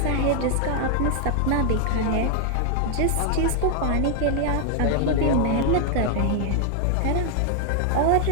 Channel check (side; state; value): both; different; correlation 0.00